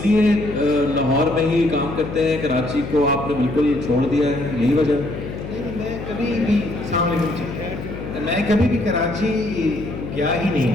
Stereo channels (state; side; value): noise; left; hum, 9 dB below the sound